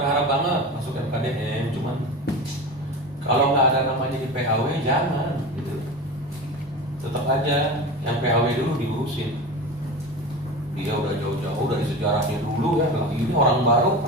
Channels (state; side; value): normal; both; correlation 0.28